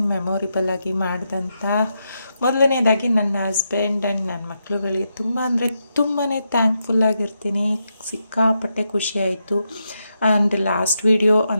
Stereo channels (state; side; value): inverted; both; correlation -0.84